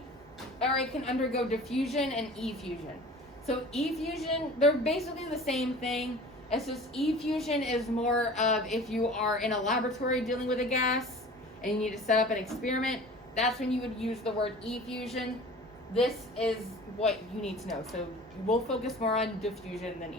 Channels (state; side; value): normal; both; correlation 0.42